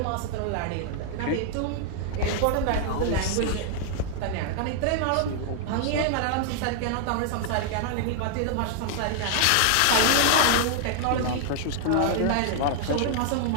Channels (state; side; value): different; both; correlation 0.00